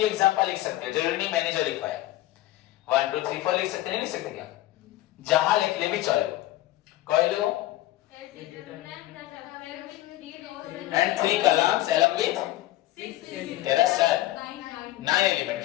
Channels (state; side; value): quieter; right; 15.9 dB